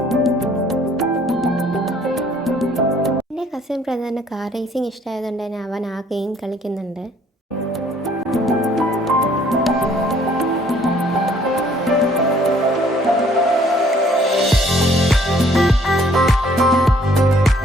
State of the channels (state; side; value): normal; both; correlation 0.60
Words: എൻ്റെ കസിൻ ബ്രദറിന് കാർ റേസിംഗ് ഇഷ്ടമായതുകൊണ്ട് തന്നെ അവൻ ആ ഗെയിം കളിക്കുന്നുണ്ട്.